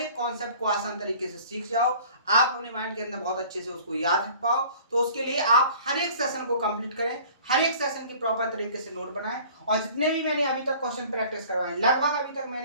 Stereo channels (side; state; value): both; inverted; correlation -0.49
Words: कॉन्सेप्ट को आसान तरीके से सीख जाओ, आप अपने माइंड के अंदर बहुत अच्छे से उसको याद रख पाओ। तो उसके लिए आप हर एक सेशन को कंप्लीट करें, हर एक सेशन की प्रॉपर तरीके से नोट बनाएं। और जितने भी मैंने अभी तक क्वेश्चन प्रैक्टिस करवाए, लगभग अभी तक